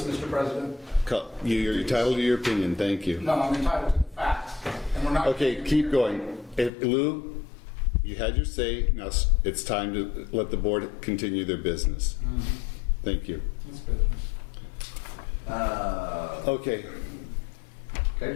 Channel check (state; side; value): drops out; right; at 6.7 s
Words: Mr. President. You're entitled to your opinion. Thank you. No, I'm entitled to the facts. And we're not... Okay, keep going. Lou, you had your say. Now it's time to let the board continue their business. Thank you. It's business. Okay.